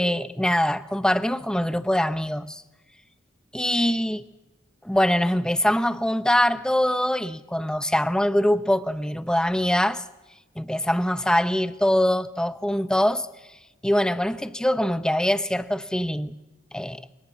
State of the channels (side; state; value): both; normal; correlation 0.93